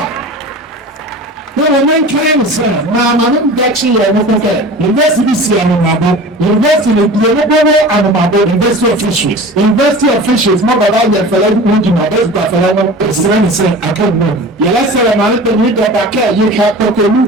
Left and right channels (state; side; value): normal; both; correlation 0.37